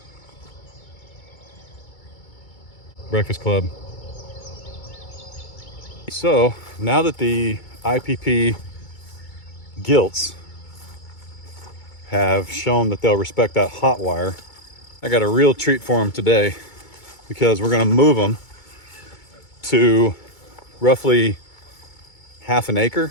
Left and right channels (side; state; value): right; late; 2.2 ms